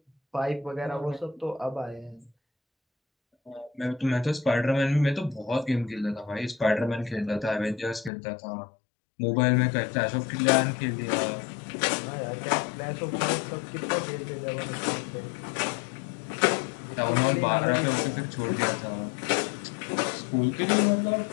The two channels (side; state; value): right; drops out; at 8.1 s